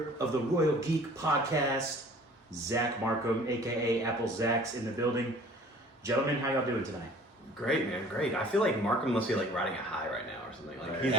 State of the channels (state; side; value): normal; both; correlation 0.50